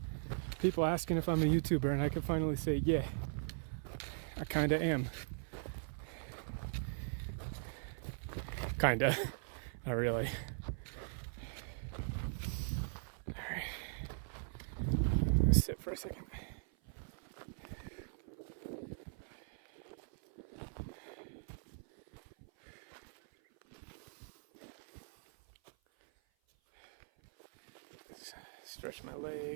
People asking if I'm a YouTuber, and I can finally say, yeah, I kinda am. Kinda. Not really. Alright. Let's sit for a second. Stretch my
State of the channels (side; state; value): left; silent; 51 dB below the other